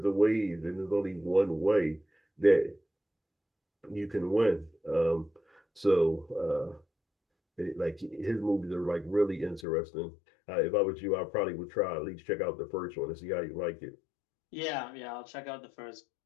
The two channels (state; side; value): drops out; right; at 9.7 s